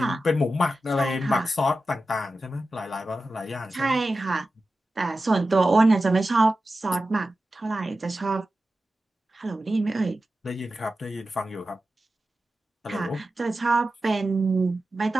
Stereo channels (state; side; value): normal; both; correlation 0.93